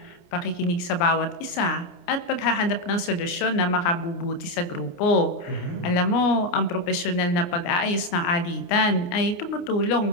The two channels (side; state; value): right; late; 29 ms